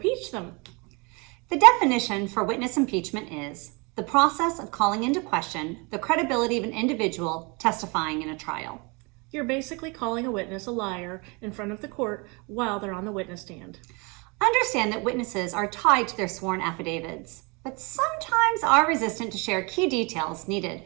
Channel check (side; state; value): left; quieter; 29.7 dB